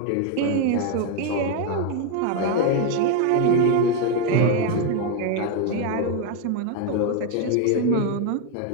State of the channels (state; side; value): different; both; correlation 0.01